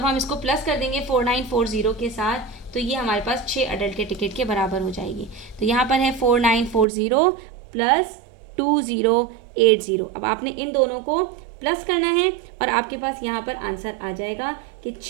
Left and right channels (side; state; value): left; drops out; at 6.9 s